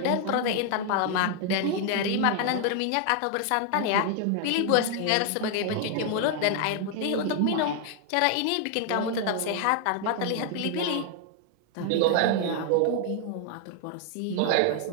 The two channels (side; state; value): both; different; correlation 0.00